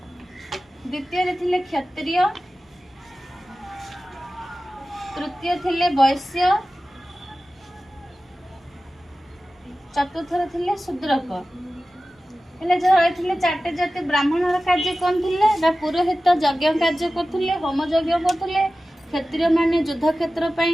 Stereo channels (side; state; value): both; normal; correlation 0.95